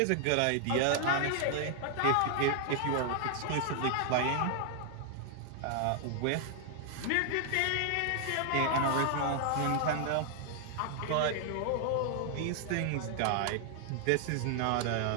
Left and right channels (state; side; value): different; both; correlation 0.00